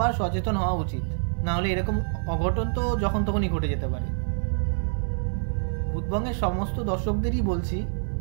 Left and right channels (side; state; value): left; silent; digital silence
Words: সচেতন হওয়া উচিত, না হলে এরকম অঘটন তো যখন তখনই ঘটে যেতে পারে। ভূতবঙ্গের সমস্ত দর্শকদেরই বলছি,